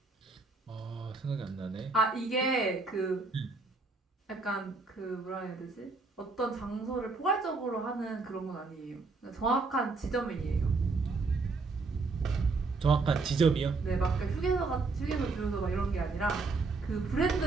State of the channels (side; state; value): left; quieter; 3.9 dB